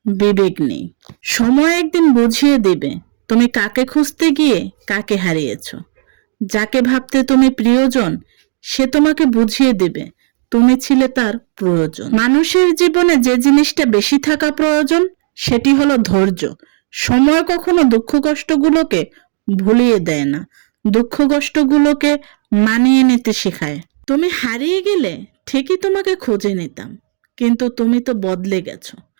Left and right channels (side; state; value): left; silent; digital silence